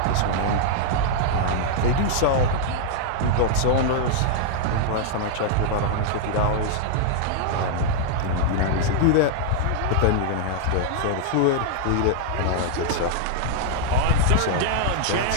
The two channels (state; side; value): different; both; correlation -0.01